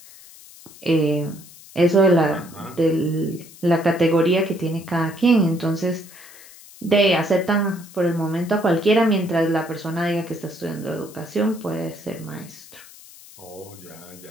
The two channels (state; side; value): noise; left; hiss, 20 dB below the sound